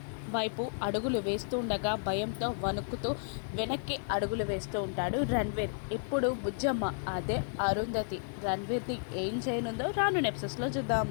వైపు అడుగులు వేస్తూ ఉండగా భయంతో వణుకుతూ వెనక్కి అడుగులు వేస్తూ ఉంటాడు రణ్వీర్. ఇప్పుడు బుజ్జమ్మ అదే అరుంధతి రణ్వీర్ని ఏం చేయనుందో రాను ఎపిసోడ్స్లో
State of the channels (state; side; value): silent; right; digital silence